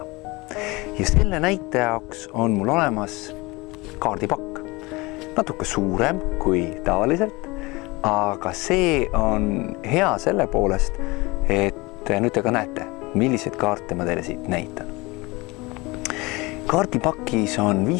Ja selle näite jaoks on mul olemas kaardipakk. Natuke suurem kui tavaliselt, aga see on hea selle poolest, et nüüd te ka näete, milliseid kaarte ma teile siit näitan. Kaardipakis on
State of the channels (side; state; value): right; quieter; 23.8 dB